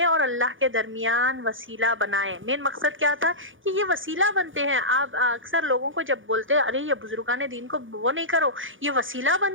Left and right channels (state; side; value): late; left; 0.57 ms